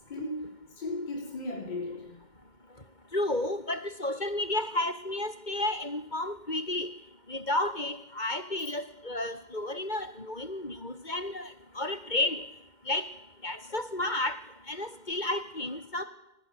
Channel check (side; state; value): right; late; 2.1 ms